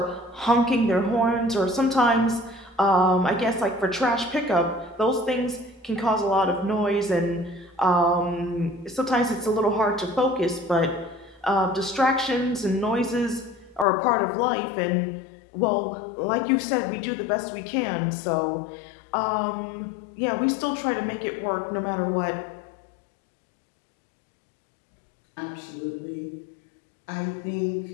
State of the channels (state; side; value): drops out; right; at 13.9 s